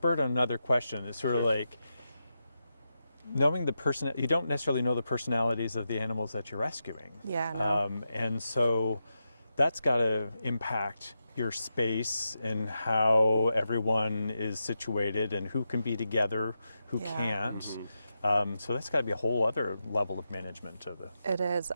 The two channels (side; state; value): both; inverted; correlation -0.88